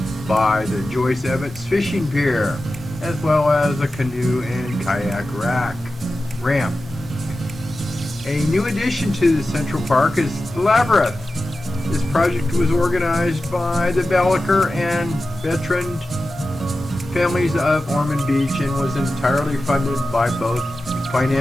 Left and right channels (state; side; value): normal; both; correlation 0.93